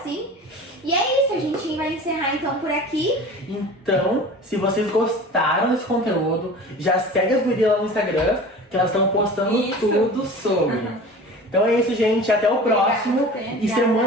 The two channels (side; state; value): both; normal; correlation 0.39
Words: E é isso, a gente vai encerrar então por aqui. Então, se vocês gostaram desse conteúdo, já segue as gurias lá no Instagram, que elas estão postando Isso. tudo sobre. Então é isso, gente. Até o próximo. Obrigada. E